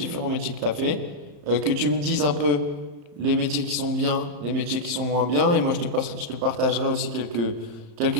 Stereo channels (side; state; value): left; late; 35 ms